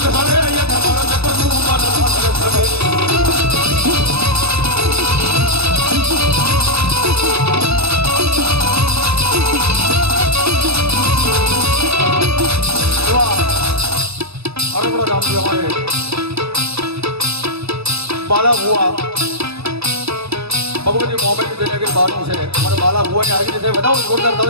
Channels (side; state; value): left; late; 0.78 ms